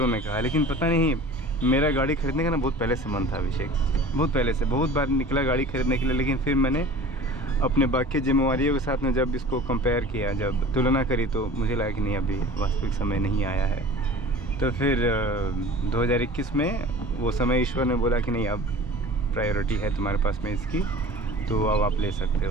ने कहा, लेकिन पता नहीं मेरा गाड़ी खरीदने का ना बहुत पहले से मन था अभिषेक, बहुत पहले से, बहुत बार निकला गाड़ी खरीदने के लिए। लेकिन फिर मैंने अपने बाकी जिम्मेवारियों के साथ में जब इसको कंपेयर किया, जब तुलना करी, तो मुझे लगा कि नहीं अभी वास्तविक समय नहीं आया है। तो फिर 2021 में वो समय ईश्वर ने बोला कि नहीं अब प्रायोरिटी है तुम्हारे पास में इसकी, तो अब आप ले सकते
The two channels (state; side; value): normal; both; correlation 0.41